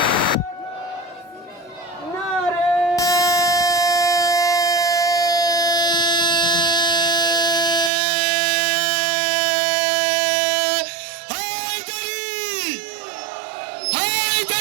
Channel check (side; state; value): left; drops out; at 7.9 s